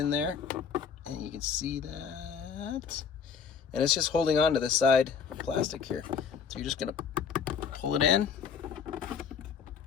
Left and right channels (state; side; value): quieter; right; 6.5 dB